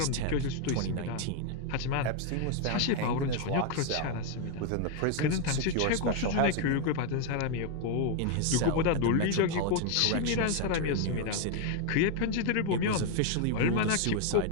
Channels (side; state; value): both; different; correlation 0.01